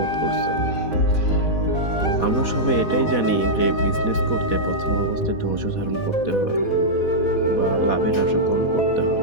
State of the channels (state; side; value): late; right; 4.0 ms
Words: করছেন। আমরা সবাই এটাই জানি যে বিজনেস করতে প্রথম অবস্থায় ধৈর্য ধারণ করতে হয় বা লাভের আশা কম করতে